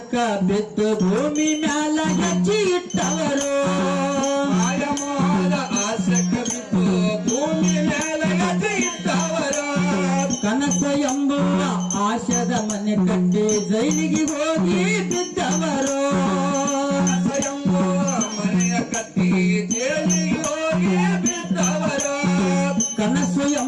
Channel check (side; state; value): both; identical; correlation 1.00